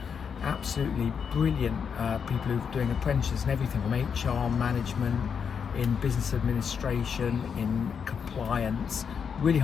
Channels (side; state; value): right; quieter; 6.7 dB